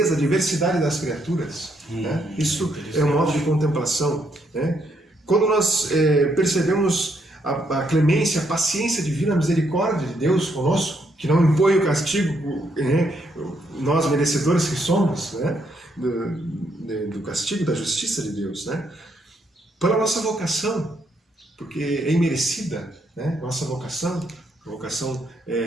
a diversidade das criaturas, né, isso é um modo de contemplação. Né? Quando nós percebemos a clemência, a paciência divina, a misericórdia de Deus conosco, que não impõe o castigo, né, nós merecedores que somos, né, do castigo, da justiça de Deus, né? Pela nossa vocação, porque é imerecida, né, nossa vocação, vocação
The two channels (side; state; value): both; normal; correlation 0.75